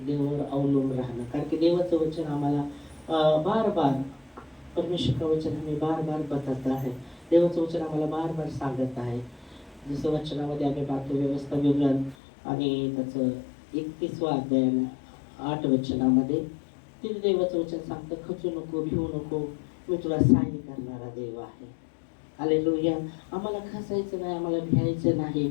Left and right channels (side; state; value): right; drops out; at 12.2 s